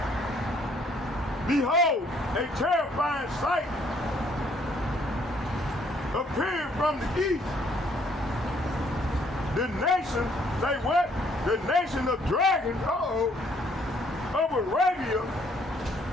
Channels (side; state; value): both; normal; correlation 0.65